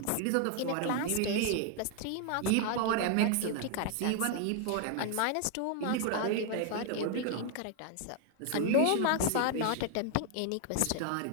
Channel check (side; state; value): both; different; correlation 0.00